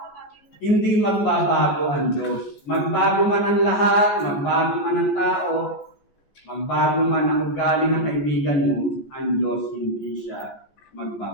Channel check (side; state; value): right; late; 14 ms